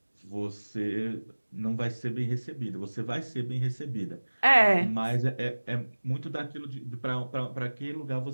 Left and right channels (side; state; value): both; inverted; correlation -1.00